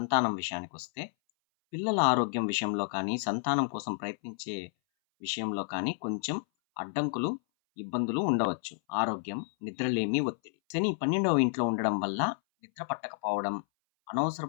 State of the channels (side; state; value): right; silent; 57 dB below the other